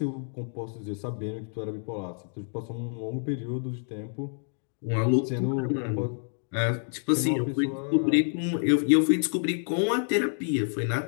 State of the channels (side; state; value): right; silent; 59 dB below the other